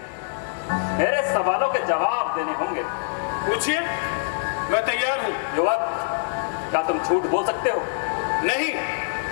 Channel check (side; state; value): right; silent; digital silence